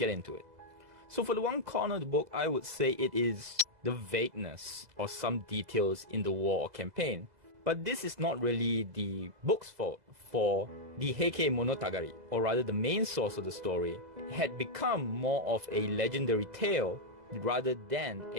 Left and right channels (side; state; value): left; late; 2.0 ms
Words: into it. So for the one con of the book, I would say it is the vagueness of some details in the war or campaign. But this is not really the book's fault, for the Heike Monogatari, or rather the main source of the story, had become more of a legendary tale rather than